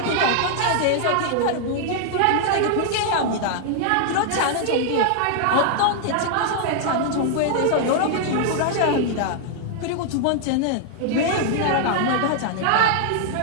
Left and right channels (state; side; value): different; both; correlation 0.00